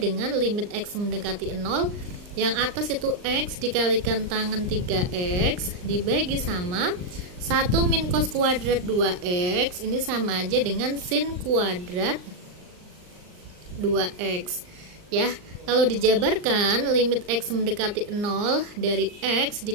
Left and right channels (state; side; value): late; left; 39 ms